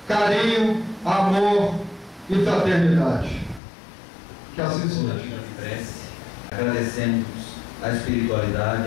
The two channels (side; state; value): right; drops out; at 3.6 s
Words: carinho, amor e fraternidade. Que assim seja. Agradecemos a